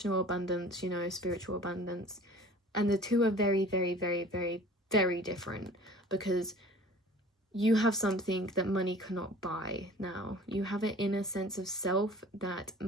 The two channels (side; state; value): both; normal; correlation 0.45